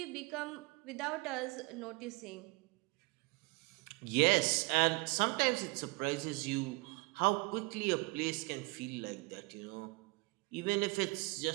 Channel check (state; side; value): quieter; left; 26.0 dB